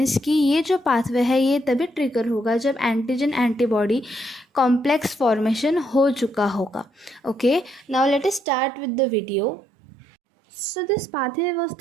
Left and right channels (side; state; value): left; drops out; at 8.4 s